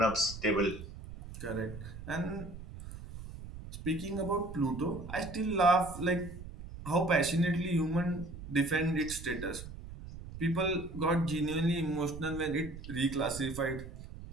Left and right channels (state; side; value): noise; right; rumble, 12 dB below the sound